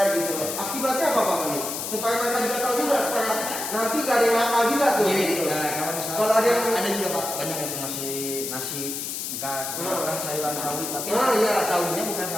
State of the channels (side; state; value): left; noise; hiss, 5 dB below the sound